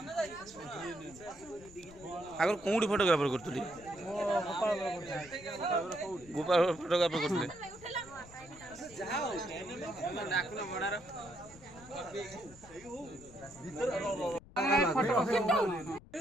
आगर कोडी फोटोग्राफर करतली गोपाल फोटोग्राफर करतले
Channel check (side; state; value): left; noise; rumble, 21 dB below the sound